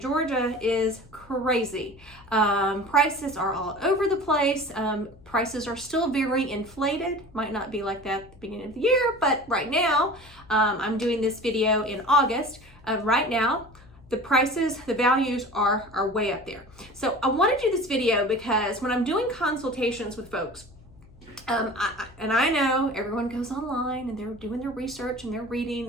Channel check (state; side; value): noise; left; hum, 24 dB below the sound